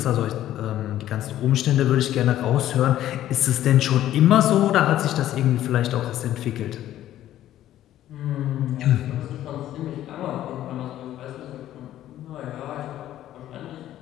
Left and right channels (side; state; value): right; quieter; 12.8 dB